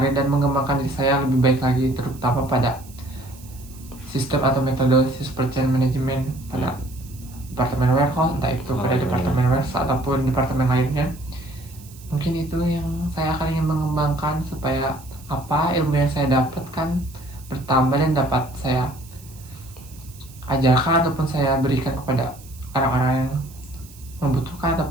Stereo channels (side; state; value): right; noise; hiss, 22 dB below the sound